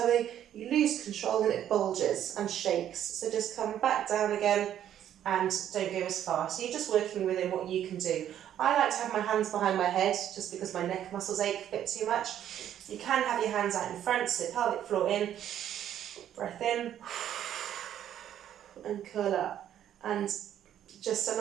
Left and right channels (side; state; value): left; quieter; 10.7 dB